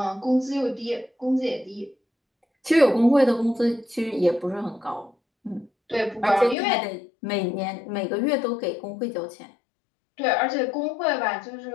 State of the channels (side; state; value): right; drops out; at 6.6 s